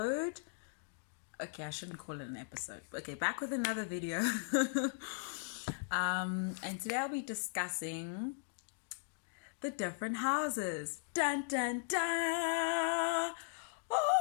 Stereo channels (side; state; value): right; silent; digital silence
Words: Okay, I shouldn't call it an episode. Okay, back with another video. And today I'll be discussing the different houses. Dun, dun, dun.